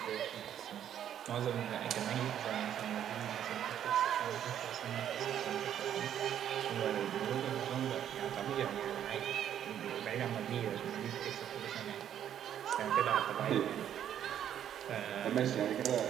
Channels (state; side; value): quieter; left; 10.1 dB